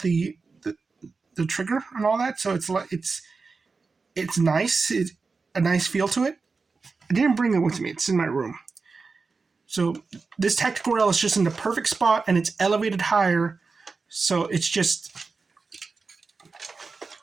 trigger and all that. So it's nice. It's a nice feel to it. I didn't bring it with me. It's in my room. So this tactical rail is just in the perfect spot, and it's elevated higher. So it's just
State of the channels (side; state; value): left; quieter; 4.4 dB